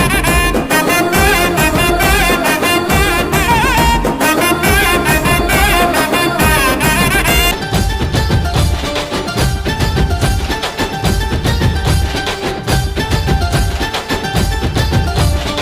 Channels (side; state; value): both; identical; correlation 1.00